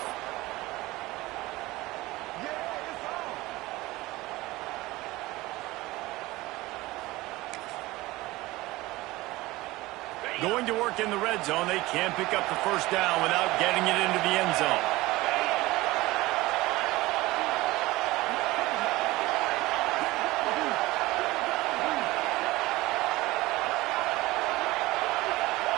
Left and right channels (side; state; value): left; quieter; 19.5 dB